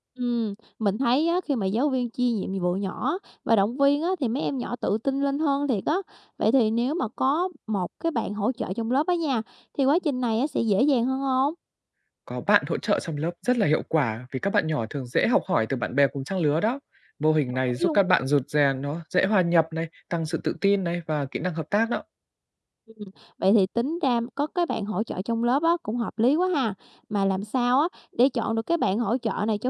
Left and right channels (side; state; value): both; identical; correlation 1.00